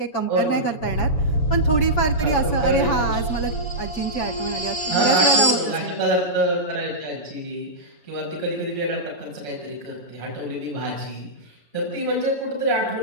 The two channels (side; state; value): right; late; 6.6 ms